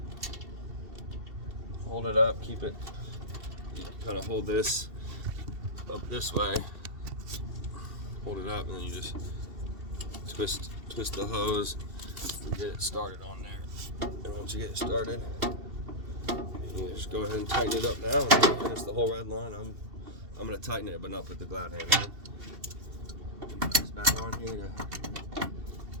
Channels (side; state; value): left; late; 2.7 ms